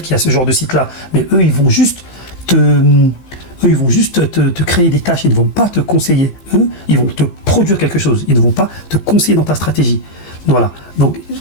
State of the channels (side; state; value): right; late; 16 ms